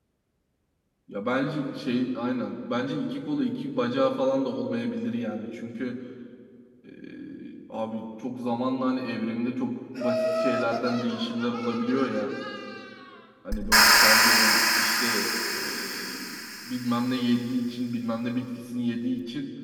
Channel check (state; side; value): identical; both; correlation 1.00